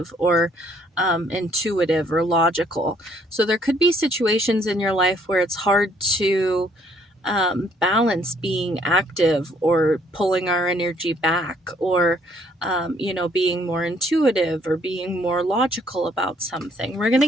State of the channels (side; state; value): both; normal; correlation 0.65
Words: or intuitive or logical. So there could be situations in your life where it's hard to balance being active or pulling our energy back, or you know, being more intuitive or being more logical about something. We're going to